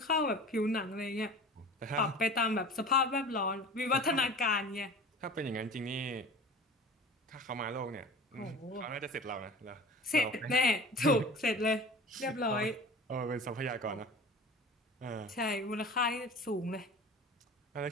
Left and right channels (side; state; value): both; normal; correlation 0.38